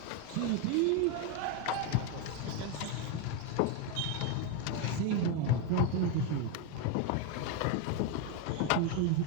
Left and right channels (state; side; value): different; both; correlation 0.02